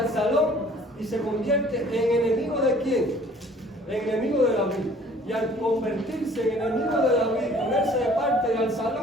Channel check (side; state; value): both; normal; correlation 0.53